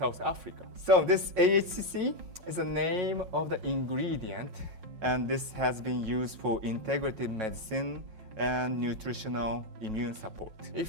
Africa. So this AHCC is the name of the ingredient, and this has been used for integrative medicine and nutritional immune support.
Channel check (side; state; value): left; late; 5.5 ms